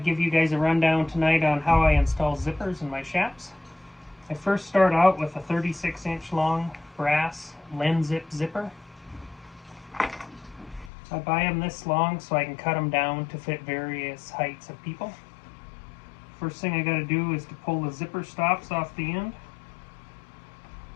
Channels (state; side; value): drops out; right; at 10.9 s